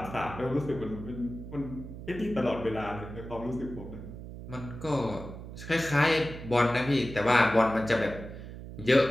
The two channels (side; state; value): right; noise; hum, 11 dB below the sound